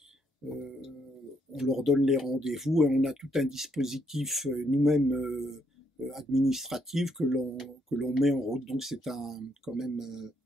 on leur donne les rendez-vous et on a tout un dispositif nous-mêmes administratif que l'on met en route. Donc c'est quand même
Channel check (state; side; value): normal; both; correlation 0.74